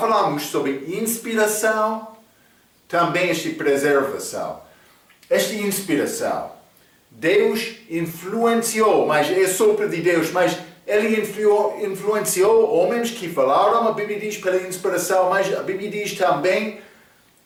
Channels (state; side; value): identical; both; correlation 1.00